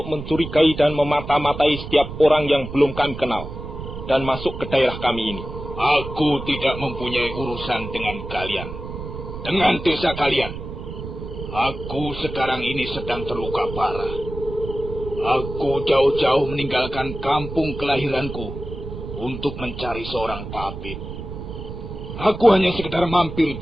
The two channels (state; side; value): noise; right; rumble, 9 dB below the sound